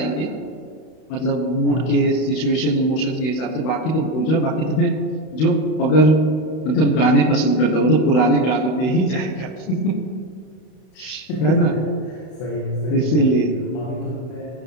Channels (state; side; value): late; right; 32 ms